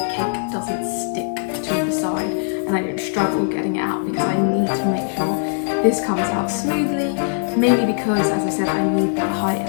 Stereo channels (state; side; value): silent; right; digital silence